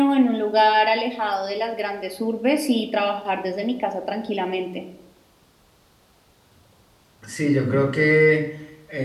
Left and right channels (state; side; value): identical; both; correlation 1.00